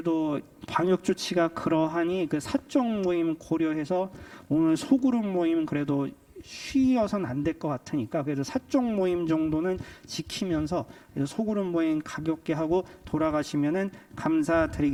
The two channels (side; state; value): both; identical; correlation 1.00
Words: 방역 조치가 그러하니 그 사적 모임 고려해서 오늘 소그룹 모임은 그래도 쉬어서는 안 될 것 같으니까 그래도 사적 모임 정도는 지키면서 소그룹 모임 가볍게 하고 돌아가시면은